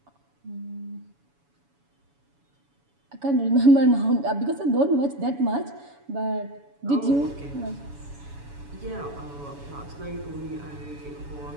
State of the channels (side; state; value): left; late; 7.1 ms